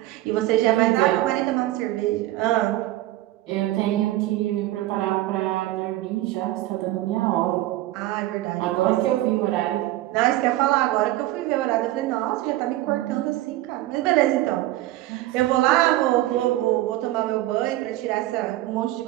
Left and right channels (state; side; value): quieter; left; 16.3 dB